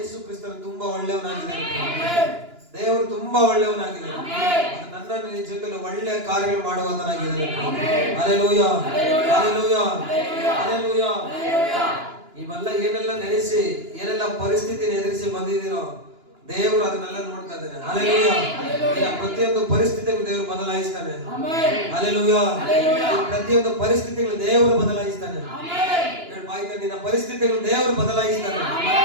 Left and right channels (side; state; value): left; late; 2.9 ms